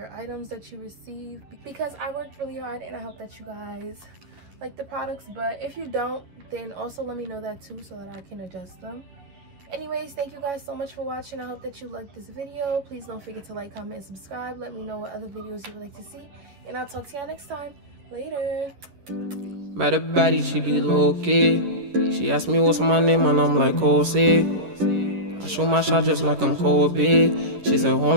items that you receive, because I worked really hard, and I hope that you guys like the products. But if you don't, then also let me know that too, so that I can adjust them. Anyways, thank you guys so much for watching. I hope that you liked this video. Please don't forget to like, comment, and subscribe. Let me know what other videos you would like to see, and I'll talk to y'all next time. Later. Met a baddie, she be low-key. She asked me what's my name, and I'm like, Jose. I shoot my shot just like I'm Kobe. She said,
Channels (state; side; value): late; left; 11 ms